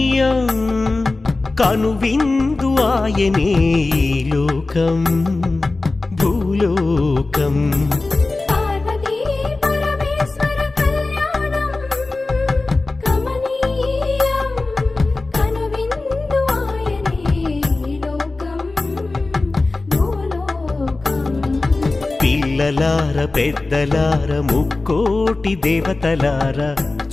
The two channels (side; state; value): right; quieter; 3.3 dB